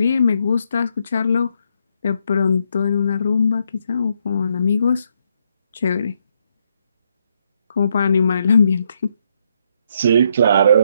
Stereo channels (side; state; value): both; inverted; correlation -0.75